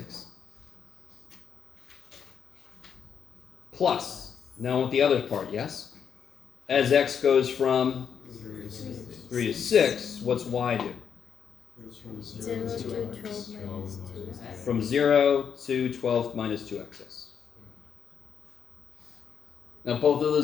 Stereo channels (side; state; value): right; quieter; 7.5 dB